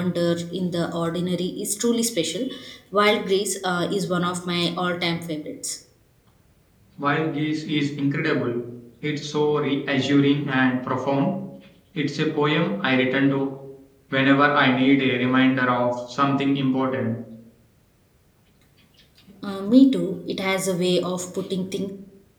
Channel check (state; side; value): identical; both; correlation 1.00